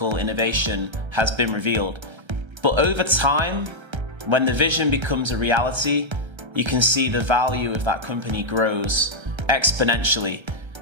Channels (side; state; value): left; late; 1.3 ms